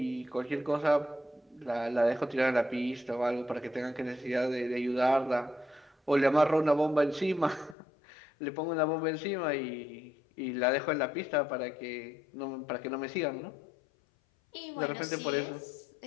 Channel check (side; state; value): right; drops out; at 7.8 s